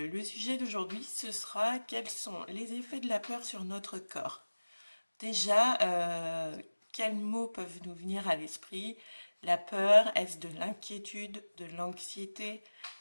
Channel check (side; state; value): both; inverted; correlation -1.00